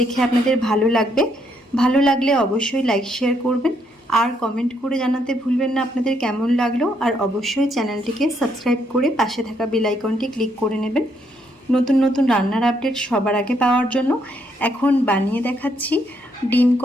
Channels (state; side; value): normal; both; correlation 0.73